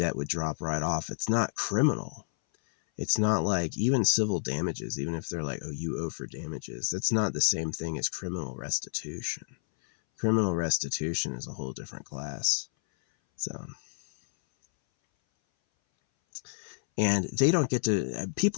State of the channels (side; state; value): right; silent; 58 dB below the other